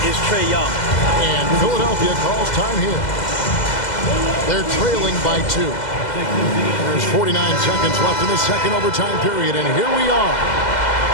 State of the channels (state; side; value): late; right; 2.0 ms